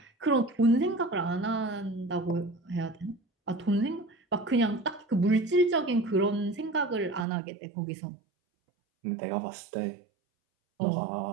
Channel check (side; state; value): left; drops out; at 7.2 s